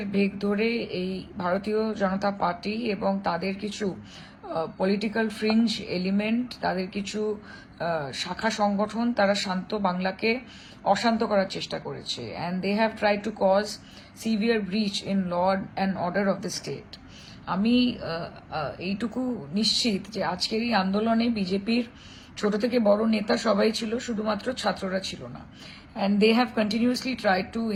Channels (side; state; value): both; identical; correlation 1.00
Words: বেগ ধরে এই ভারতীয় জনতা পার্টি এবং তাদের কিছু পলিটিক্যাল ফ্রিঞ্জ এলিমেন্ট, তাদের কিছু শাখা সংগঠন, তারা শান্ত বাংলাকে অশান্ত করার চেষ্টা করেছে। And they have try to cause severe breach in law and order of the state. আমি এইটুকু নিশ্চিত যে আজকের এই আন্দোলনে বিজেপির ছোট থেকে বড় নেতা সবাই ছিল, শুধুমাত্র ছাত্ররা ছিল না। And they have continuously try to